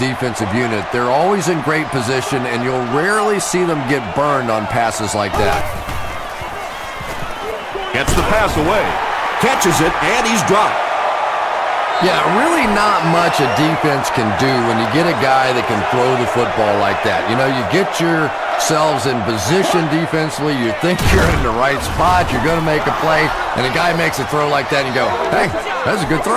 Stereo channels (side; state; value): both; identical; correlation 1.00